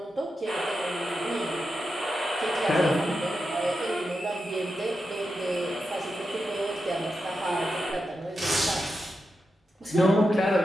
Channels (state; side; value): normal; both; correlation 0.88